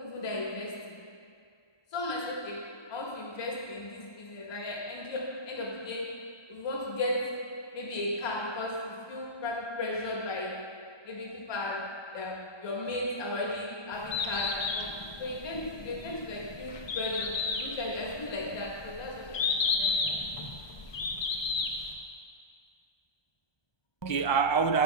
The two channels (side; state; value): right; late; 1.2 ms